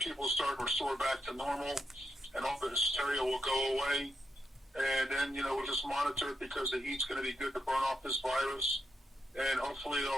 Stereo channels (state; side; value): normal; both; correlation 0.83